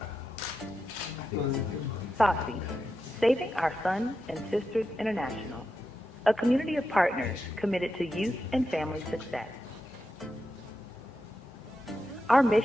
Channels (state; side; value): normal; both; correlation 0.88